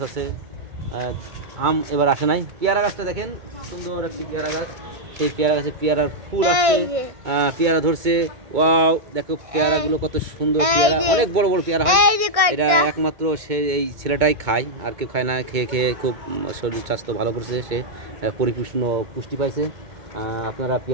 আছে। আম এবার আসে নাই। পেয়ারা গাছটা দেখেন, সুন্দর একটি পেয়ারা গাছ। সেই পেয়ারা গাছে পেয়ারার ফুল আসছে, পেয়ারা ধরছে। ওয়াও, দেখো পেয়ারাগুলো কত সুন্দর পেয়ারা, অনেক বড় বড় পেয়ারা হয়। এটা একমাত্র এই ছেলেটাই খায়, আর কেউ খায় না। খেয়ে খেয়ে খুব শরীর স্বাস্থ্য ভালো করছে, সে পরিপূর্ণ পুষ্টি পাইছে। আপনারা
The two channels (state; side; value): late; left; 1.6 ms